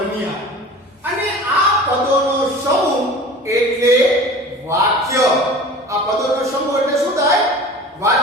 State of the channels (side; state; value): both; normal; correlation 0.39